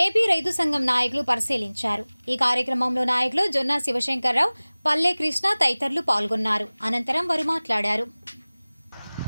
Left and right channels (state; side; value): inverted; both; correlation -1.00